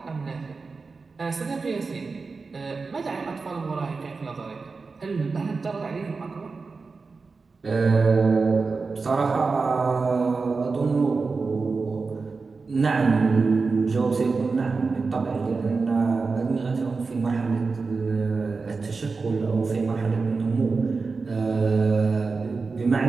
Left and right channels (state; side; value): quieter; left; 4.3 dB